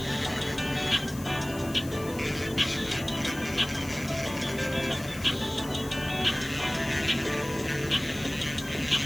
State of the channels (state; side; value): noise; left; hiss, 15 dB below the sound